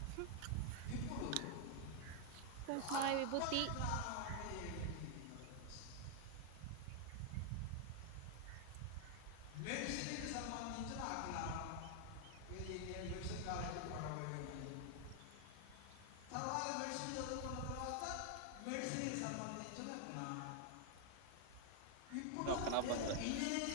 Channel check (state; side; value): different; both; correlation 0.00